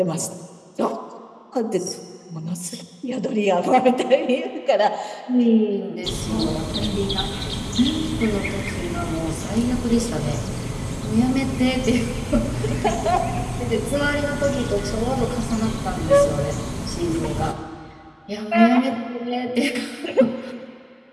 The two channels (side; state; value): both; identical; correlation 1.00